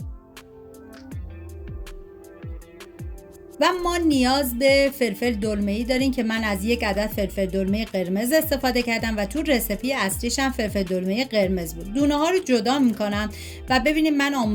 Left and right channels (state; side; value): identical; both; correlation 1.00